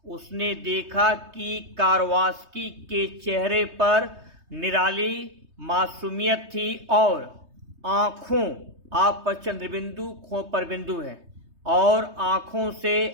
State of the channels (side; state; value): left; late; 3.2 ms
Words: उसने देखा कि कारवास्की के चेहरे पर निराली मासूमियत थी और आँखों, आप पर चंद्रबिंदु, खो पर बिंदु है, और आँखों से